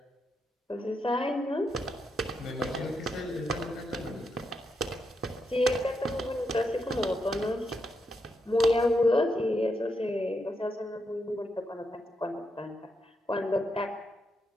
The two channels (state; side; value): normal; both; correlation 0.82